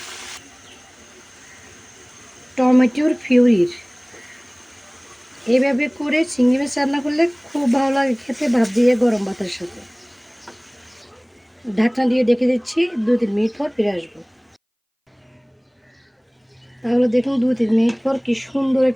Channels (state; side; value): identical; both; correlation 1.00